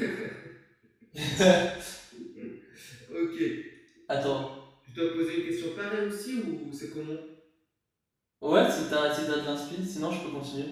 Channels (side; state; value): both; identical; correlation 1.00